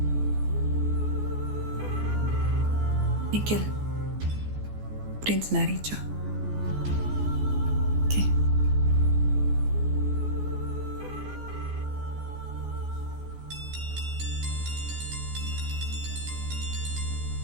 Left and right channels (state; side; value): late; left; 14 ms